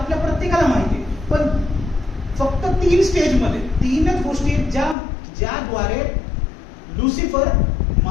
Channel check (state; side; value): drops out; right; at 5.0 s